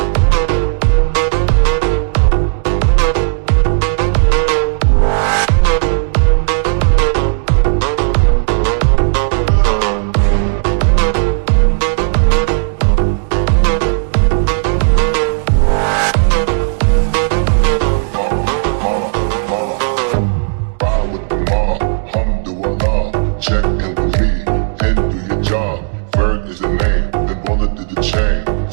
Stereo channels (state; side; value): silent; left; digital silence